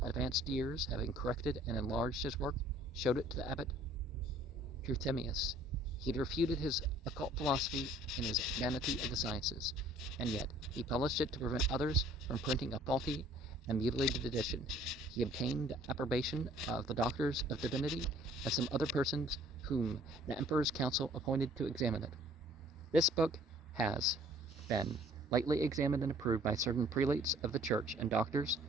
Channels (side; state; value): both; normal; correlation 0.55